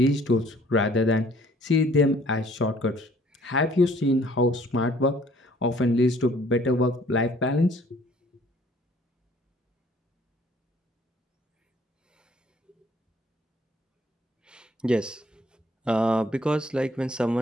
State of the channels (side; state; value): both; normal; correlation 0.58